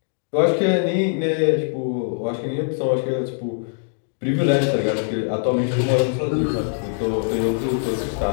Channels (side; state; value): right; silent; digital silence